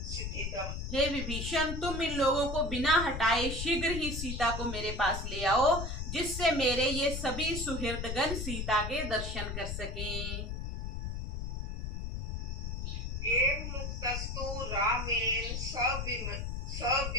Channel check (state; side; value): noise; left; rumble, 4 dB below the sound